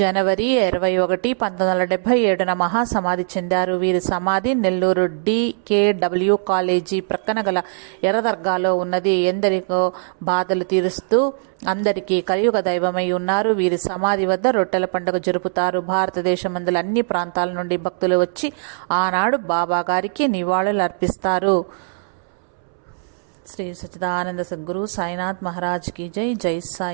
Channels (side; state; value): left; silent; 65 dB below the other